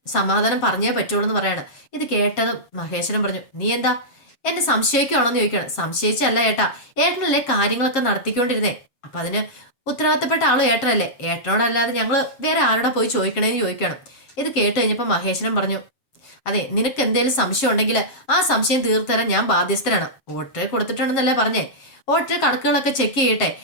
സമാധാനം പറഞ്ഞേ പറ്റുള്ളൂ എന്ന് പറയാണ്. ഇത് കേട്ടതും മഹേശ്വരൻ പറഞ്ഞു, നീ എന്താ എന്നെ സംശയിക്കുകയാണോന്ന് ചോദിക്കണം. സംശയിച്ചല്ല ഏട്ടാ, ഏട്ടനല്ലേ കാര്യങ്ങളൊക്കെ നടത്തിക്കൊണ്ടിരുന്നേ. അപ്പൊ അതിന് ഉത്തരവാദിത്തപ്പെട്ട ആളും ഏട്ടനല്ലേ, ഏട്ടനോടല്ലാതെ ഞങ്ങള് വേറെ ആരോടാ പോയി ചോദിക്കണേന്ന് ചോദിക്കണം. ഇത് കേട്ട് കഴിഞ്ഞപ്പോ മഹേശ്വരൻ പറഞ്ഞു, അതെ, നിനക്ക് എന്തെങ്കിലും സംശയം ഉണ്ടെങ്കിൽ ആ സംശയം തീർത്തരാൻ ഞാൻ ബാധ്യസ്ഥനാണ്. ഓട്ടറെ കൊടുത്തിട്ടുണ്ടെന്നല്ലേ പറഞ്ഞേ. ഓട്ടറെ കണക്കുകളൊക്കെ ചെക്ക് ചെയ്യട്ടെ.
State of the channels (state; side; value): late; right; 7.4 ms